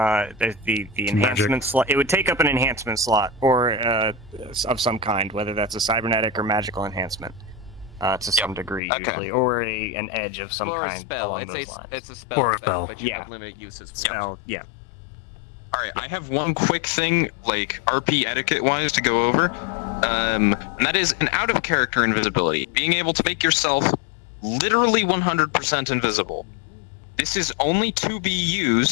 enhancement slot. It would take up an enhancement slot or of some kind, whether that's a cybernetic or magical enhancement, to some degree usually, or an edge of some kind along those lines. It's a spell, but you have limited uses. Spell, yeah. All right, I have one quick thing, like RP etiquette-wise, to go over, and that is an out-of-character invisibility, being able to make yourself literally 100% invisible. This is only to be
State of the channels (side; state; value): right; drops out; at 8.8 s